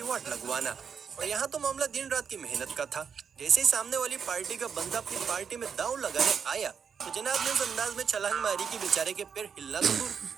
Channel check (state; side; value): quieter; left; 6.8 dB